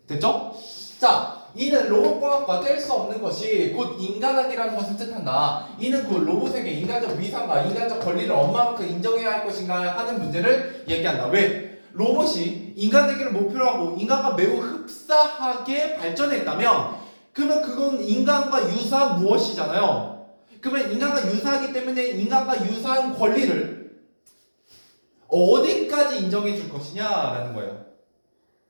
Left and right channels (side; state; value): both; inverted; correlation -1.00